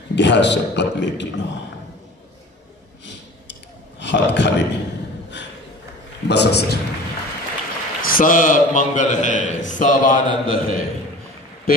घ्या शपथ लेकीनो. हात खाली बस. सर सब मंगल है, सब आनंद है.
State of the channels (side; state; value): both; normal; correlation 0.41